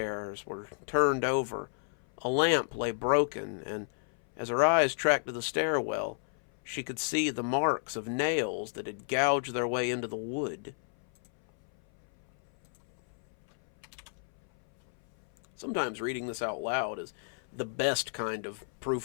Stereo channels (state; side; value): silent; right; 56 dB below the other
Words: were turned over, a lamp lay broken, and as her eyes tracked to the stairwell, she could see the marks of nails that had gouged their way into the wood. Sometimes reading this out loud is the best kind of